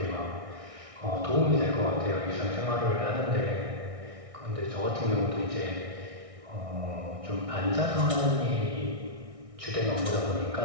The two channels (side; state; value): left; late; 1.6 ms